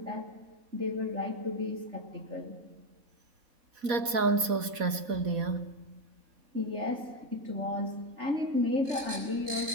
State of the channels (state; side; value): late; left; 4.1 ms